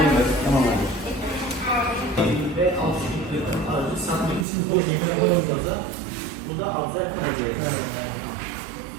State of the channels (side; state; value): left; drops out; at 4.5 s